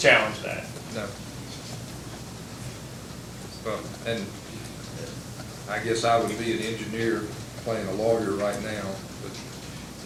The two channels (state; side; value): identical; both; correlation 1.00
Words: that. No. Well, and I guess I would be an engineer playing a lawyer right now, but